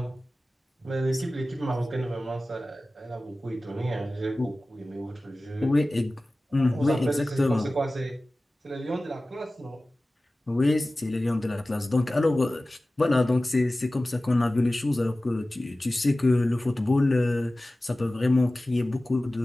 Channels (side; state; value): both; normal; correlation 0.97